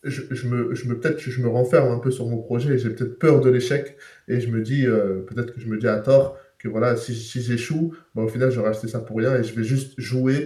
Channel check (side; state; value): both; identical; correlation 1.00